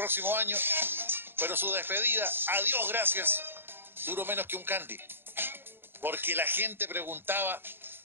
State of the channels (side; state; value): left; late; 0.10 ms